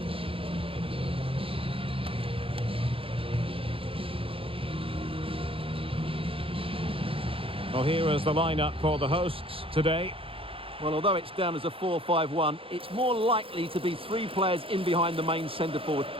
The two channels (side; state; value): left; late; 0.27 ms